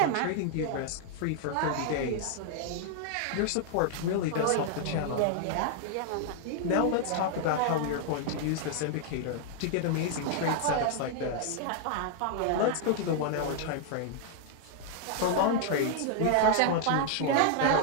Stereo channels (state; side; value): different; both; correlation 0.00